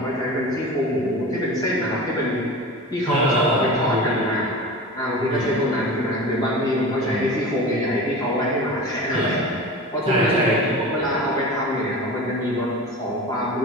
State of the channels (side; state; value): both; normal; correlation 0.33